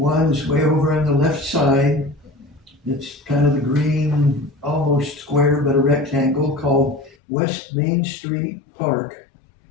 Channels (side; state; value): right; drops out; at 7.2 s